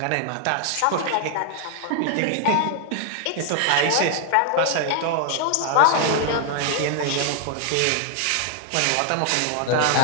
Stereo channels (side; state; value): both; different; correlation 0.00